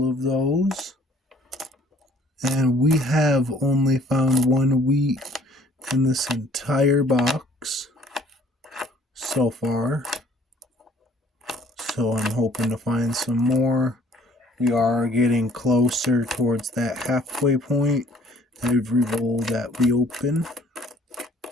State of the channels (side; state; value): both; normal; correlation 0.57